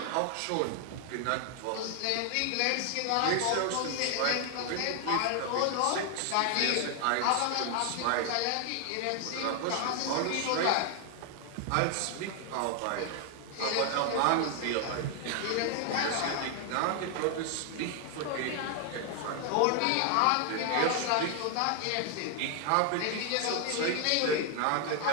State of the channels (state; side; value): different; both; correlation 0.00